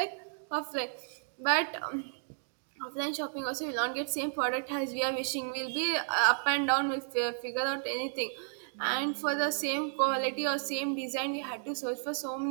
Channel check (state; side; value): silent; left; digital silence